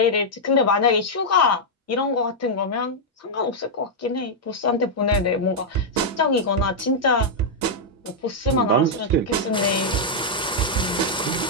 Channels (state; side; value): normal; both; correlation -0.05